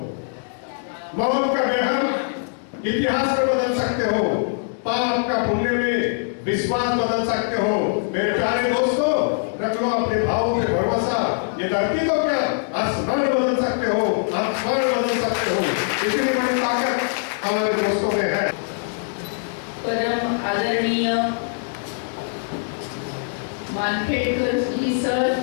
मौत का बेहम इतिहास में बदल सकते हो, पाप का पुण्य में विश्वास बदल सकते हो। मेरे प्यारे दोस्तों, रख लो अपने भावों में भरोसा। ये धरती तो क्या, आसमान बदल सकते हो, आसमान बदल सकते हो। इतनी बड़ी ताकत हमारे दोस्तों में है। परम आदरणीय मानखेड़कर जी सर,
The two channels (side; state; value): right; silent; digital silence